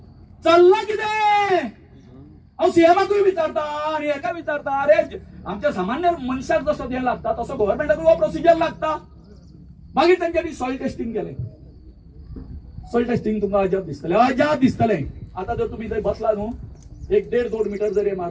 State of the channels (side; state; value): both; identical; correlation 1.00